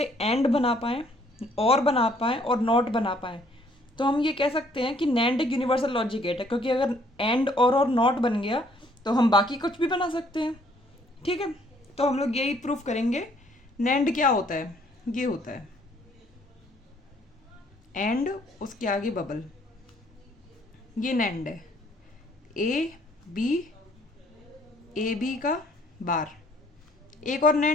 एंड बना पाएँ, और बना पाएँ, और नॉट बना पाएँ। तो हम ये कह सकते हैं कि नैंड एक यूनिवर्सल लॉजिक गेट है, क्योंकि अगर एंड और नॉट बन गया तो हम बाकी कुछ भी बना सकते हैं। ठीक है, तो हम लोग यही प्रूफ करेंगे। नैंड क्या होता है? ये होता है एंड, उसके आगे बबल, ये नैंड है। ए बी का बार। एक और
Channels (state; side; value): normal; both; correlation 0.63